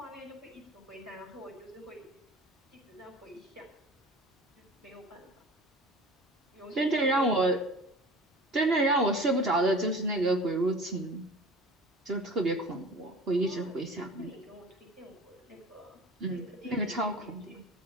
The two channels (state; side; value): normal; both; correlation 0.40